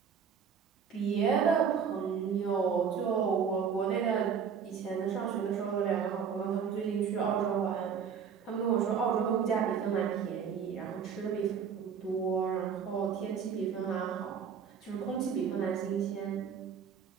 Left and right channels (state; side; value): quieter; left; 6.9 dB